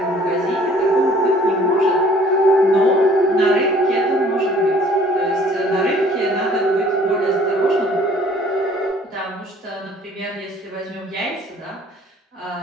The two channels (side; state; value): both; normal; correlation 0.55